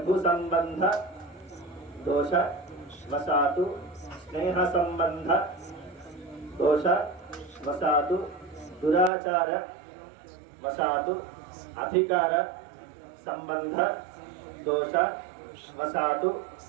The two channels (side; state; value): left; drops out; at 9.1 s